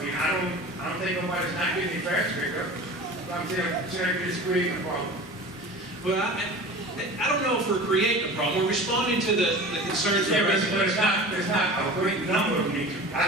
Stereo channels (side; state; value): both; normal; correlation 0.37